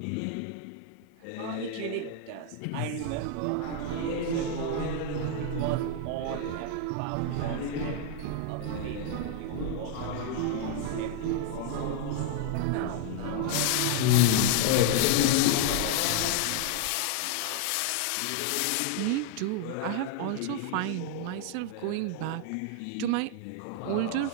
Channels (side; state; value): both; different; correlation 0.00